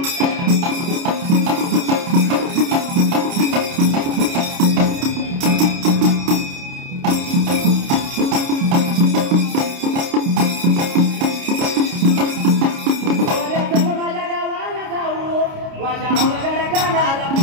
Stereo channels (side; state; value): left; late; 29 ms